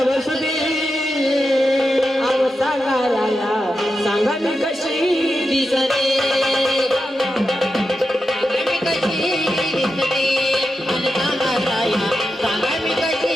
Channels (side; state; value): both; normal; correlation 0.89